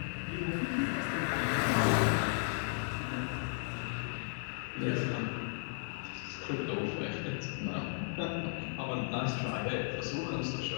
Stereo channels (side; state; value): right; silent; 54 dB below the other